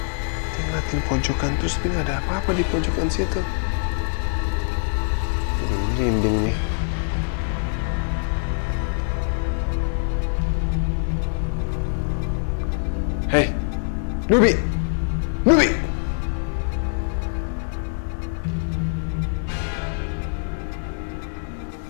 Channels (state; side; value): silent; right; digital silence